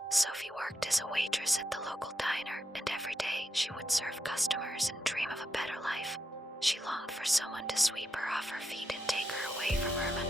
Sophie worked as a waitress at the local diner, and every day she would serve customers and dream of a better life. She longed for someone to sweep her off her feet and take her away from her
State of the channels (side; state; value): both; normal; correlation 0.84